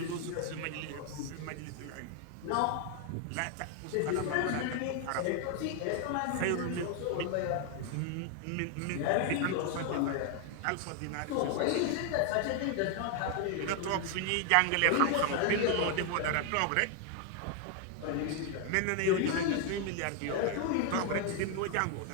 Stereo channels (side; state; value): both; different; correlation 0.00